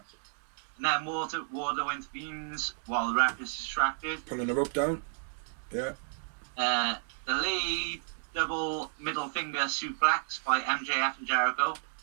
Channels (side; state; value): left; silent; digital silence